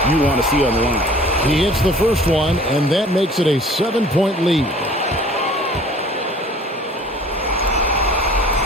you want to see on the line. He hits the first one, and that makes it a 7-point lead.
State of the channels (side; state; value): both; normal; correlation 0.49